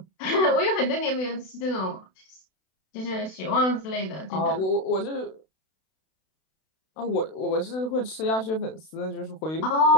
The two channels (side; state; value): right; late; 32 ms